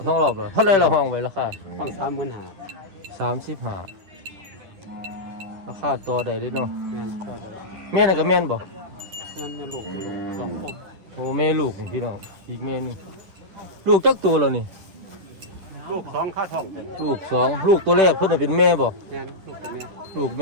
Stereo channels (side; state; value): left; late; 10 ms